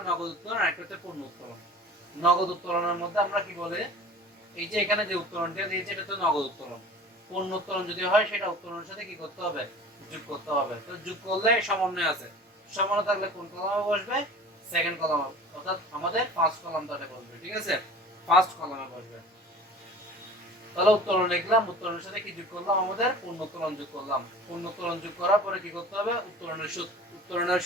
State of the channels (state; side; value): normal; both; correlation 0.41